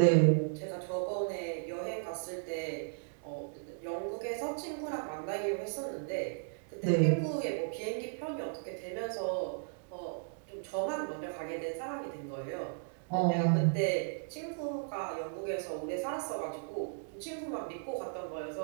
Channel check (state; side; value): silent; left; digital silence